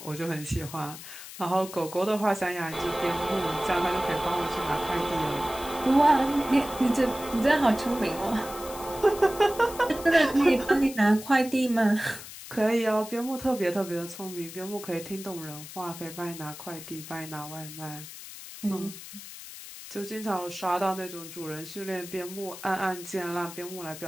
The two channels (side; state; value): left; noise; hiss, 13 dB below the sound